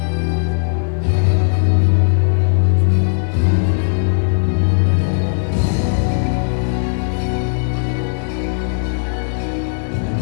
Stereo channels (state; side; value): silent; right; digital silence